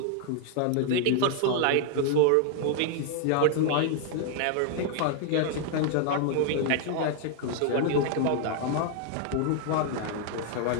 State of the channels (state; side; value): different; both; correlation 0.00